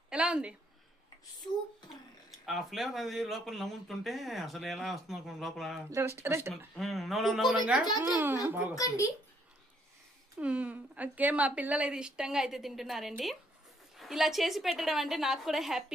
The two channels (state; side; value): normal; both; correlation 0.68